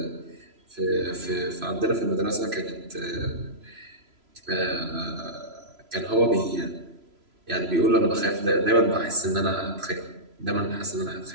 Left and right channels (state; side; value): late; left; 3.0 ms